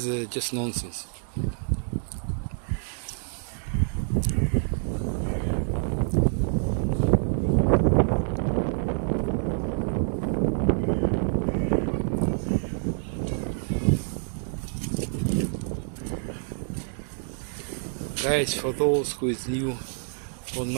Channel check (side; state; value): left; silent; digital silence